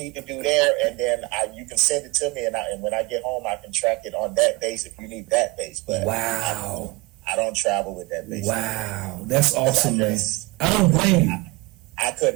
to do there, and then you can send it to me, and when I get home, I can track it on that bass if you need that bass. But wow, I don't travel with that bass. Wow, that's awesome, man. I don't blame you. I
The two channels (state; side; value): quieter; left; 21.2 dB